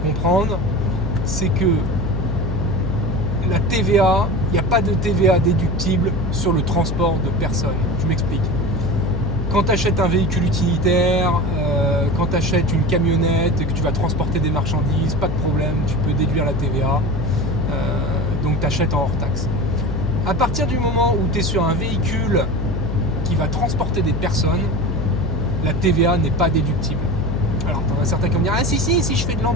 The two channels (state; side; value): noise; left; hum, 3 dB below the sound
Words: c'est que la TVA, il n'y a pas de TVA déductible sur le transport de personnes. Je m'explique. Quand tu achètes un véhicule utilitaire, quand tu achètes une camionnette et que tu vas transporter des marchandises, pas de problème, tu peux déduire la TVA. Donc tu achètes en hors taxe. À partir du moment où tu es sur un véhicule qui va transporter des personnes, la TVA n'est pas déductible. Alors, tu en as certains qui vont me dire: ah si je fais de